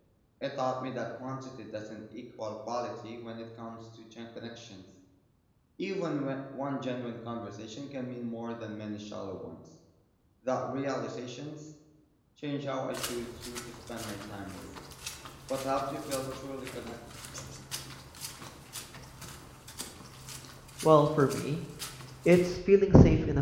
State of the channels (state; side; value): identical; both; correlation 1.00